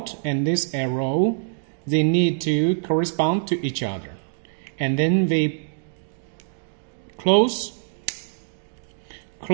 and this arrow. They need to correspond to each other, and then we close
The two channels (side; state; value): left; silent; digital silence